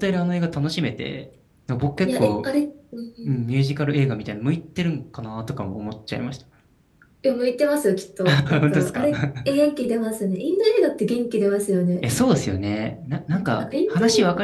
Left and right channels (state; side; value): identical; both; correlation 1.00